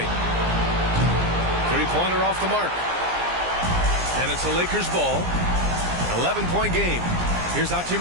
Three-pointer off the mark. And it's a Lakers ball. 11-point game. Here's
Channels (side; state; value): left; late; 17 ms